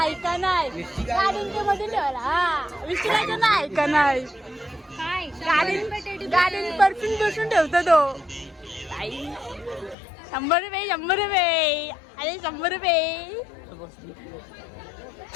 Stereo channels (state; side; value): drops out; right; at 10.0 s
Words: ऐका नाही गाडींच्या मध्ये ठेवायला. हा विचारायचं ना ऐका नाही. गाडीन परफ्यूम बसून ठेवतो तो. 100 रुपये 100 रुपये. अरे 100 रुपये.